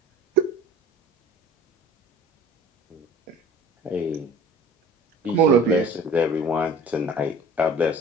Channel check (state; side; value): normal; both; correlation 0.45